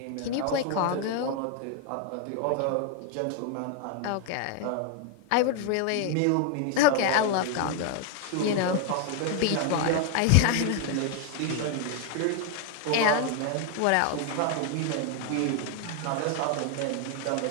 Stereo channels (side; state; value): both; different; correlation 0.01